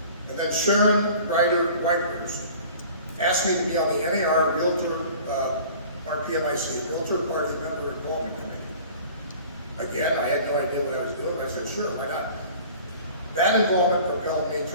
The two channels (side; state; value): both; inverted; correlation -0.45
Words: And then Sharon Ryder-Whitehurst asked me to be on the NAR Realtor, RPMIC, Realtor Party Member Involvement Committee. Again, I had no idea what I was doing. I said, sure, why not? That involvement propelled me